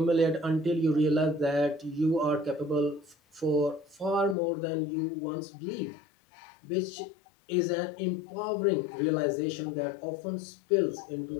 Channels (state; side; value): drops out; right; at 4.4 s